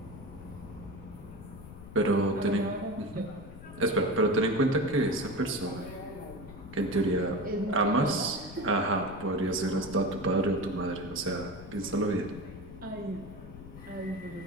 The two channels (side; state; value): left; noise; rumble, 15 dB below the sound